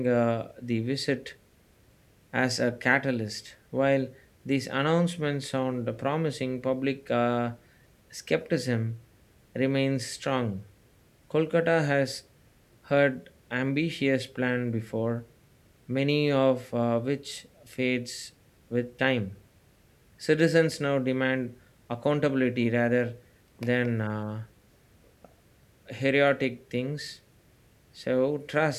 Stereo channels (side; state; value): both; identical; correlation 1.00